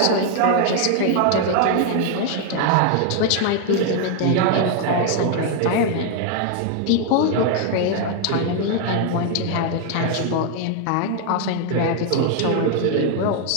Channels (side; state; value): both; different; correlation 0.00